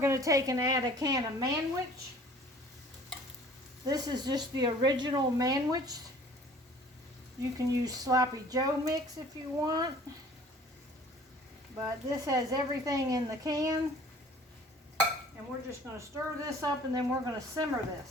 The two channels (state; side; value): normal; both; correlation 0.50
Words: to take and add a can of Manwich. This is just the original Manwich. You can use Sloppy Joe mix if you want. But this has everything in the can. And we're just going to stir this up and then we're going to simmer